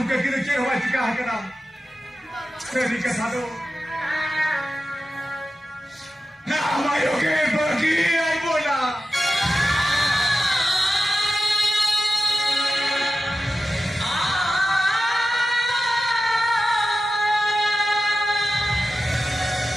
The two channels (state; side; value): normal; both; correlation 0.93